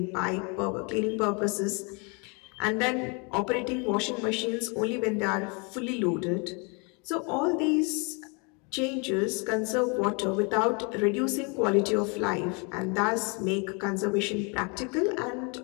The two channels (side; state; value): right; quieter; 33.2 dB